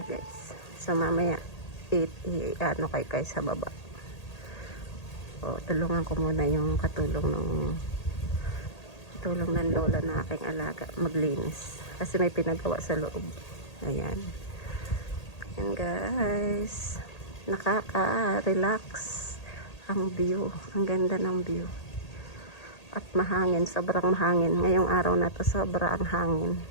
guys. So mamaya kay sa baba. O tulungan ko muna yung katulong ng lola na aking alaga maglinis. Kasi may pinagawa sa loob. Ayan. Ayan guys. Nakaka-relax ang view. Ang ganda ng view. At mahangin. Sobrang mahangin. Ngayong araw na to sobrang hangin.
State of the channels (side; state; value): right; late; 1.8 ms